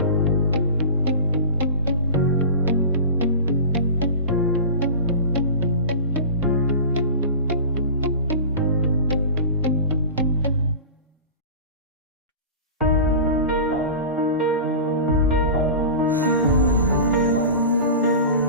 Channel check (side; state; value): both; inverted; correlation -0.32